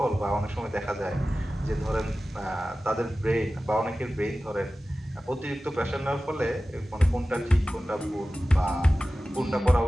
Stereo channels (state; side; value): normal; both; correlation 0.95